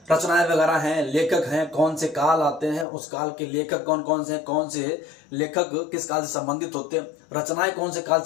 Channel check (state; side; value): drops out; right; at 2.9 s